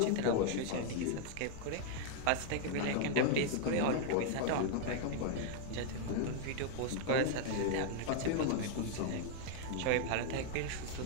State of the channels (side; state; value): both; different; correlation 0.00